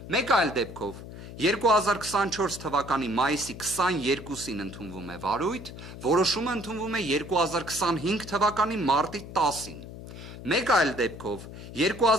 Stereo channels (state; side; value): noise; left; hum, 13 dB below the sound